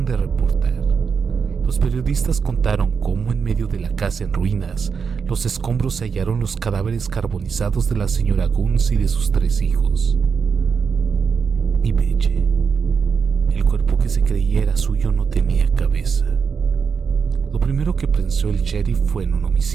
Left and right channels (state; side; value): quieter; left; 6.0 dB